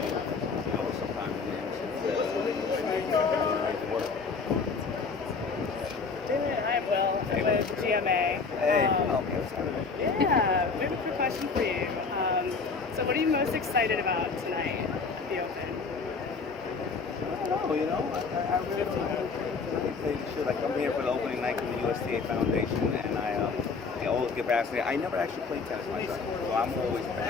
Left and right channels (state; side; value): quieter; right; 4.7 dB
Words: sometimes in the amazing work. Hi, Will. I'm with GMA. Hey, Yeah, we have a quick question for you. So what are you most excited about tonight at the Open? I don't know, I really don't know. I tell you the truth, like I'm here for the opening night for the USDA Foundation, and I always get fascinated. I never actually played tennis myself, so I'm always